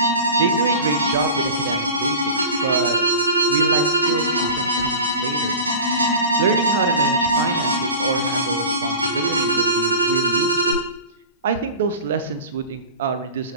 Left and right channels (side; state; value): both; inverted; correlation -0.34